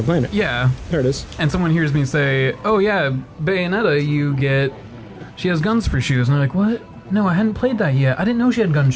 playing it. Yeah. There it is. And someone hears me say, oh yeah, Bayonetta, she has guns for shoes. And they're like, what? No, I hadn't played that yet. I didn't know she had gun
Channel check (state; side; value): identical; both; correlation 1.00